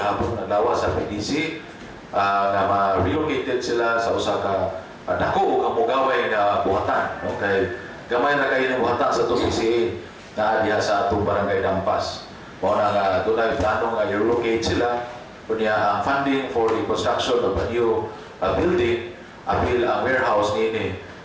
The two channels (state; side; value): identical; both; correlation 1.00